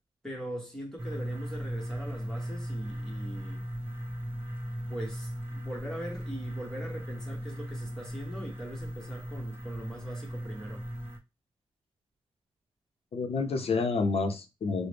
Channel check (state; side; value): normal; both; correlation 0.80